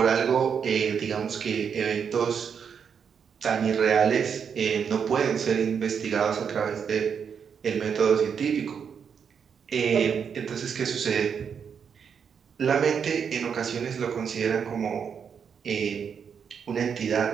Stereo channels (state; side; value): quieter; left; 7.0 dB